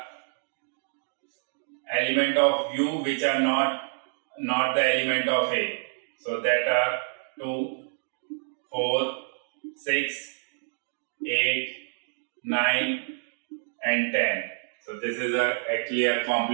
of U which are not the element of A. So that are 2, 4, 6, 8, 9 and 10. So this is actually a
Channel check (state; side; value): silent; left; digital silence